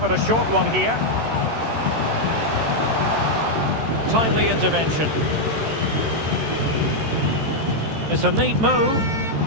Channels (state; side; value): late; left; 13 ms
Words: a short one here. Timely intervention. It's a neat move.